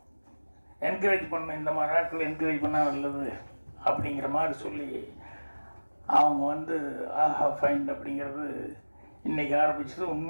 என்கரேஜ் பண்ணணும், இந்த மாதிரி நாட்கள் என்கரேஜ் பண்ணால் நல்லது அப்படிங்கிற மாதிரி சொல்லி அவங்க வந்து ஆஹா ஃபைண்ட் அப்படிங்கிறது இன்றைக்கி ஆரம்பிச்சது.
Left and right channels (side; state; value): both; inverted; correlation -1.00